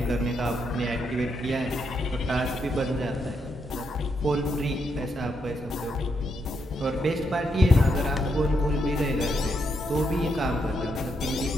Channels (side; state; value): both; normal; correlation 0.80